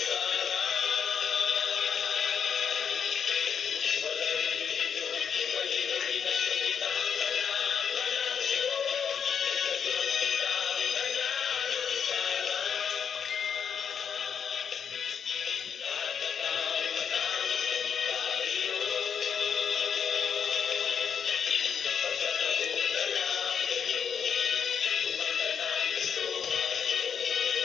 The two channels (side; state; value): right; quieter; 7.3 dB